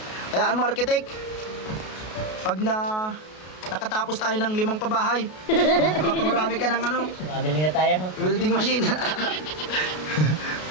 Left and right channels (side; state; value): right; late; 33 ms